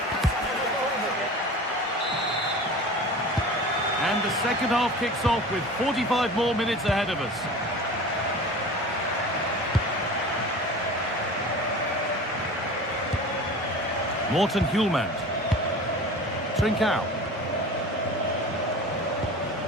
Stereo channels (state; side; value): normal; both; correlation 0.37